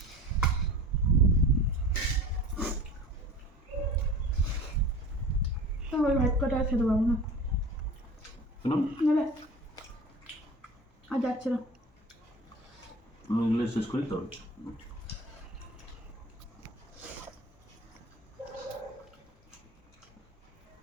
ওই ভাত কটা আর খেতে পারবো না, কেন? নেবে আর যাচ্ছে না। আমি এগুলো শেষ করি তো।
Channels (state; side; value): normal; both; correlation 0.38